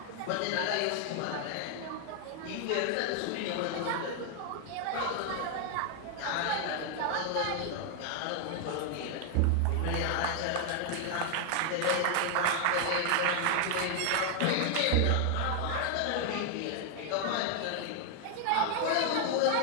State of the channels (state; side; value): different; both; correlation 0.00